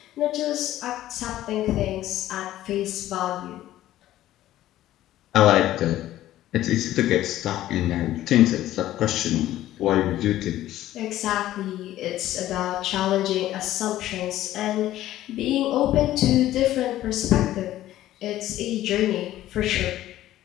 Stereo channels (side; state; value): right; quieter; 14.0 dB